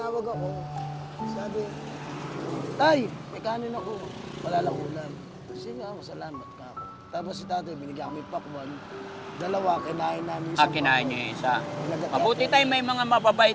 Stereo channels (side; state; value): both; identical; correlation 1.00